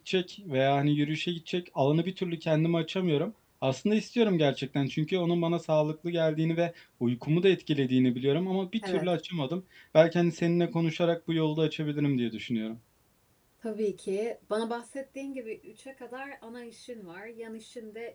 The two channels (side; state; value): both; identical; correlation 1.00